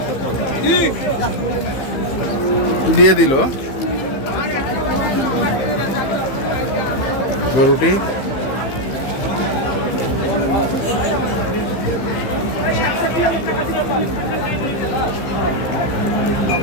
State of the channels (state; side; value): late; right; 15 ms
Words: দিয়ে দিল গরুটি।